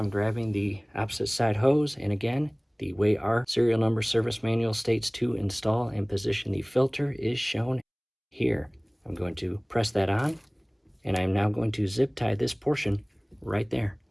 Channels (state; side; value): identical; both; correlation 1.00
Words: grabbing the opposite side hose, and again, the way our serial number service manual states to install and position the filter is shown here. I'm going to press that on, and I'm now going to zip tie this portion right there.